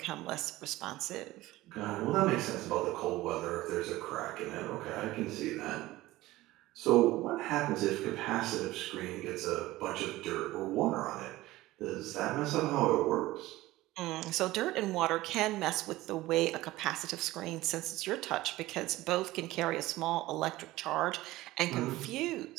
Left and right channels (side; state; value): left; quieter; 17.6 dB